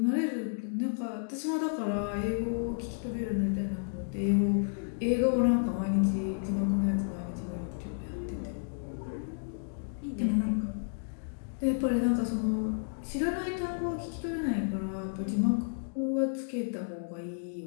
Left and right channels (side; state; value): right; silent; digital silence